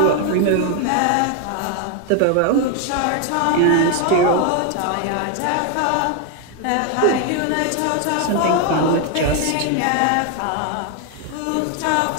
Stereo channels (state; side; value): different; both; correlation 0.01